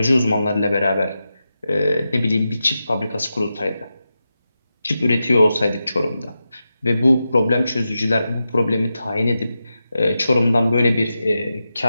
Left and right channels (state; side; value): inverted; both; correlation -0.90